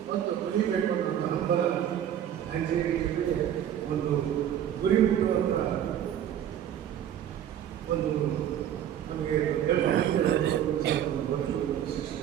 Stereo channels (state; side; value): quieter; left; 10.3 dB